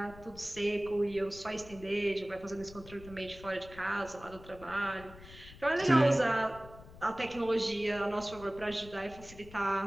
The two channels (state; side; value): noise; left; rumble, 18 dB below the sound